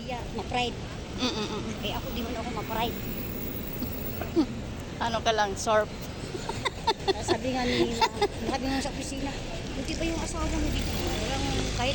ma-pride. Mm-mm. Eh ako, di man ako ma-pride. Ano ka lang, sorb. Sabi nga sa opisina, hindi pa yung asawa mo dito. Walang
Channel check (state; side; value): identical; both; correlation 1.00